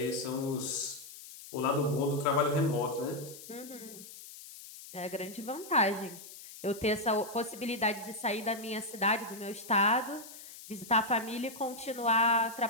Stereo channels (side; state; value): left; noise; hiss, 15 dB below the sound